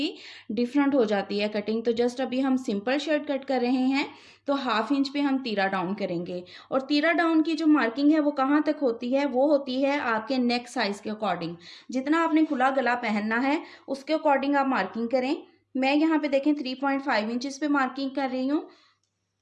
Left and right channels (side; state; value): both; identical; correlation 1.00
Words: डिफरेंट हो जाती है कटिंग। तो जस्ट अभी हम सिंपल शर्ट कट कर रहे हैं तो हाफ इंच पे हम तीरा डाउन करेंगे। और तीरा डाउन की जो मार्किंग है वो कहाँ तक होती है, वो होती है आपके नेक साइज के अकॉर्डिंग। जितना आपने खुला गला पहनना है उसके अकॉर्डिंग आप मार्किंग करें। मैं यहाँ पे देखें 3.5 इंचेस पे मार्किंग कर रही हूँ।